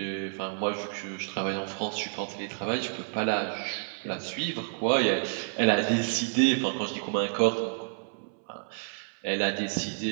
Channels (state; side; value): silent; left; 58 dB below the other